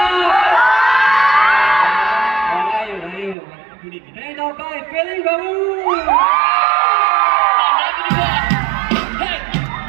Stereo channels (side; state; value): left; drops out; at 3.4 s